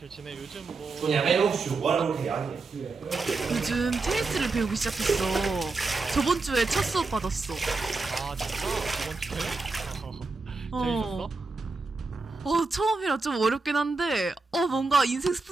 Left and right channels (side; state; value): left; quieter; 3.9 dB